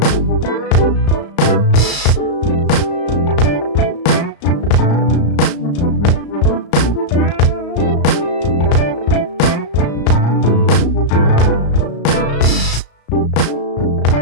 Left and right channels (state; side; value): late; right; 34 ms